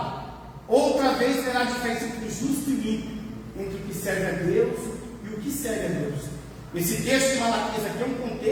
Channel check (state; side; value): identical; both; correlation 1.00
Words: outra vez terá diferença entre o justo e o ímpio, entre o que serve a Deus e o que serve a Deus. Esse texto de Malaquias aqui é um